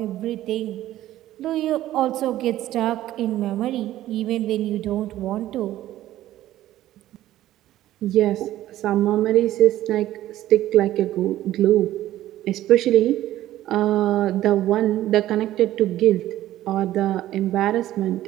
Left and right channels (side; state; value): left; quieter; 14.1 dB